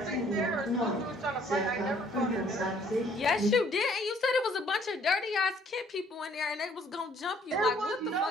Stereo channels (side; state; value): both; normal; correlation 0.61